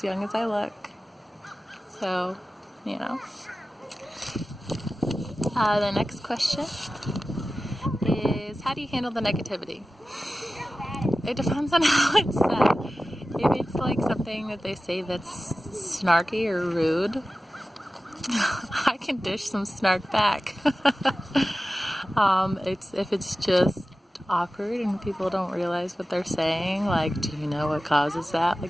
young as I look. So, you know. The next question is, how do you handle the negativity? It depends on how it's said. If it's like something that they say that's snarky or rude, I can dish some snark back. If it's just awkward and people don't realize what they're saying, like, do you know what causes that?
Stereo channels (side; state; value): both; normal; correlation 0.95